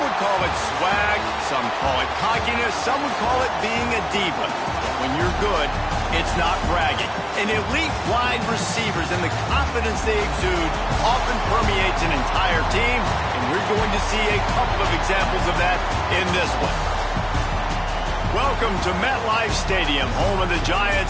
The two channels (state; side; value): identical; both; correlation 1.00